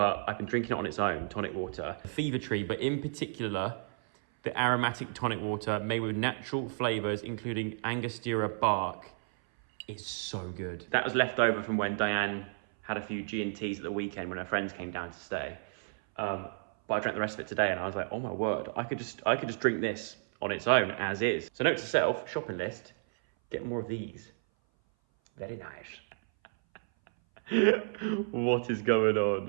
I've been drinking it on its own, tonic water. The Fever Tree, but in particular, the aromatic tonic water made with natural flavours, including Angostura bark, is so good. That was left over from when Dianne had a few G&Ts at the weekend when her friends came down to stay. But I drank the rest of it today and I was like, oh my word, I could just drink this on its own as is. So note to self, shopping list, get more of these. Very nice. What is going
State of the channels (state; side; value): silent; left; 56 dB below the other